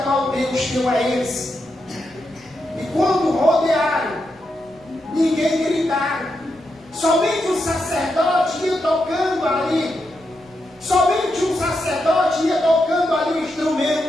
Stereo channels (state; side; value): noise; left; rumble, 29 dB below the sound